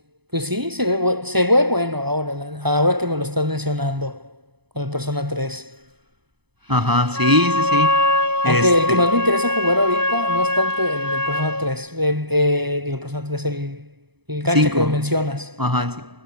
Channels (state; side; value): late; left; 0.98 ms